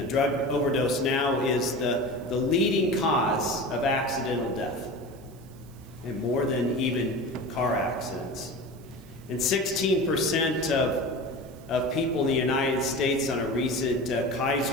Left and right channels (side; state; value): right; noise; hiss, 27 dB below the sound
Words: drug overdose now is the leading cause of accidental death, and more than even car accidents. And 16% of people in the United States on a recent